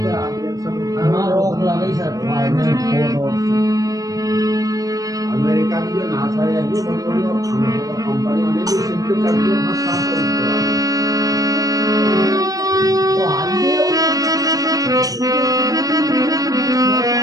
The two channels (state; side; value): late; left; 0.17 ms